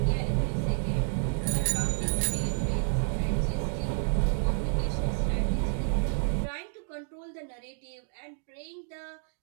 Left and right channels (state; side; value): silent; left; digital silence